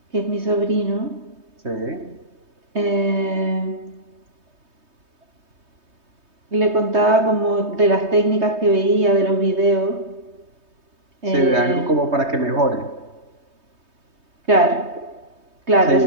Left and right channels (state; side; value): late; left; 3.2 ms